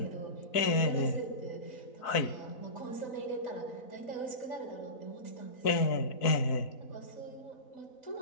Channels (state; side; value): late; right; 4.0 ms